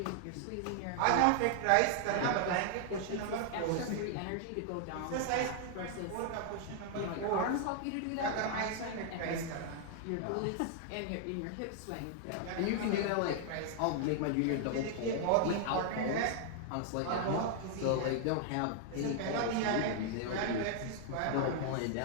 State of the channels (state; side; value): different; both; correlation 0.00